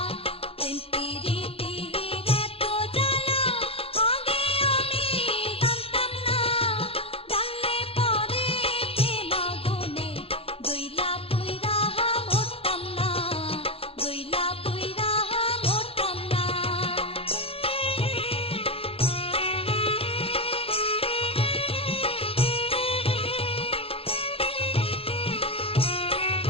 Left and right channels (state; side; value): late; right; 0.27 ms